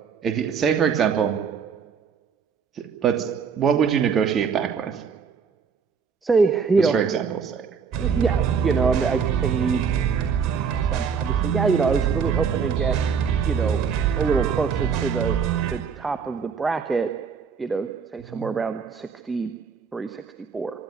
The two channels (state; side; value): quieter; left; 6.4 dB